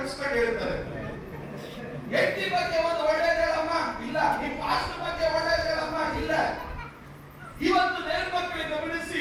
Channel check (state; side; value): identical; both; correlation 1.00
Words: ಹೇಳ್ತಾರೆ. ಹೆಂಡತಿ ಬಗ್ಗೆ ಒಂದು ಒಳ್ಳೇದು ಹೇಳಮ್ಮ, ಇಲ್ಲ. ನಿಮ್ ಪಾಸ್ಟರ್ ಬಗ್ಗೆ ಒಳ್ಳೇದು ಹೇಳಮ್ಮ, ಇಲ್ಲ. ಇವತ್ತು ದೇವರ ಮಕ್ಕಳಿಗೆ ಗಮನಿಸಿ,